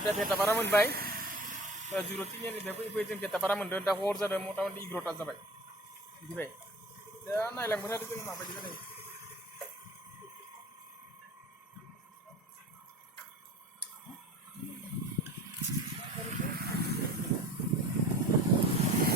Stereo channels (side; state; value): both; normal; correlation 0.41